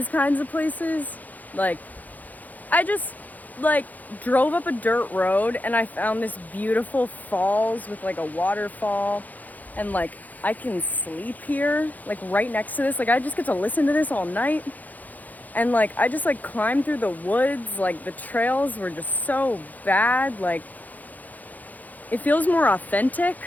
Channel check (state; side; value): late; right; 0.081 ms